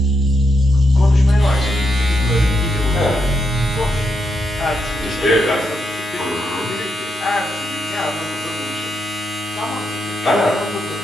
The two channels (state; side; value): normal; both; correlation 0.82